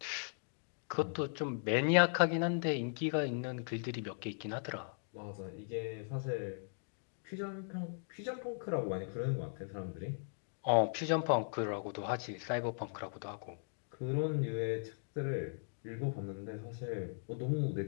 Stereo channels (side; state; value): right; silent; digital silence